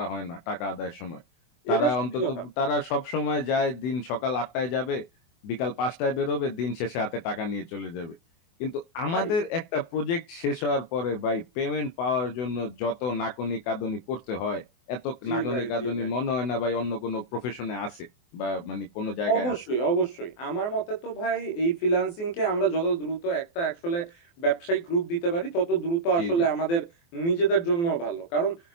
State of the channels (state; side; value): late; right; 24 ms